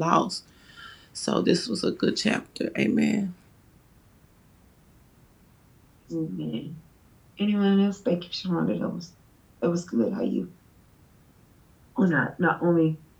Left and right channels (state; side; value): identical; both; correlation 1.00